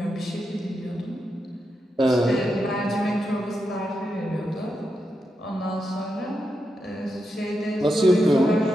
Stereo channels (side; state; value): both; normal; correlation 0.86